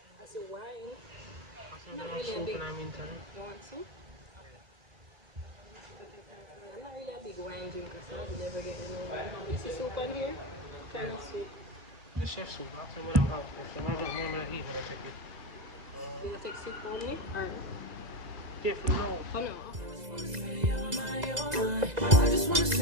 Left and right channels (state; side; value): late; left; 2.0 ms